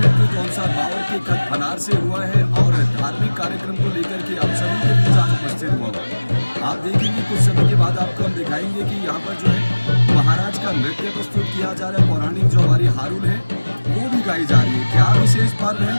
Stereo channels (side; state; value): both; inverted; correlation -1.00